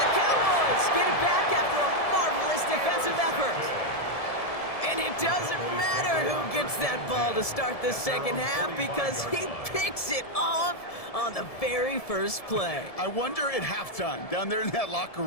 the Cowboys get it back after a marvelous defensive effort. And it doesn't matter who gets that ball to start the second half because he picks it off on the very first play. I wonder at halftime, down there in that locker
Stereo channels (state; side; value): late; right; 1.7 ms